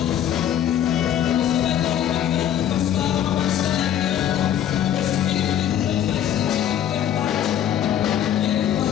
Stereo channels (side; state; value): right; quieter; 10.5 dB